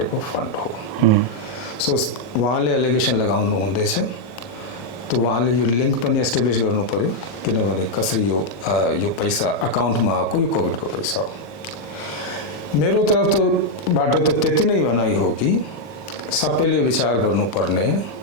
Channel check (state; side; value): late; right; 40 ms